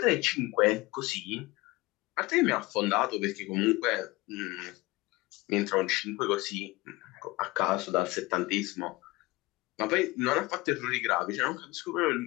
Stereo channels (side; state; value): right; quieter; 21.6 dB